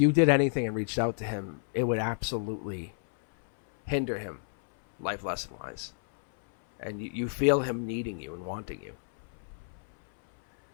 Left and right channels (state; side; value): silent; right; 58 dB below the other